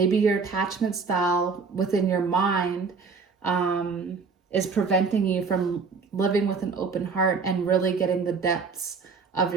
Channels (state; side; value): quieter; left; 5.0 dB